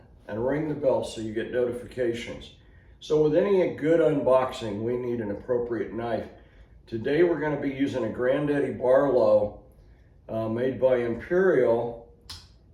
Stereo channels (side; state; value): both; identical; correlation 1.00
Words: and ring the bell so you get notifications. So with any good unboxing, we need an appropriate knife. Today we're going to be using a Granddaddy Barlow made by Imperial